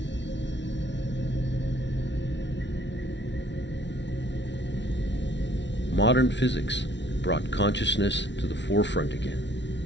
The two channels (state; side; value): late; right; 0.52 ms